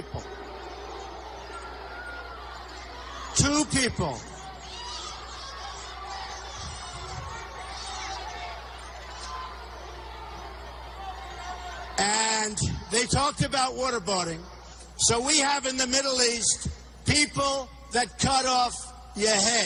Two people. And they talked about waterboarding. So we have in the Middle East people that cut off your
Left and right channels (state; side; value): identical; both; correlation 1.00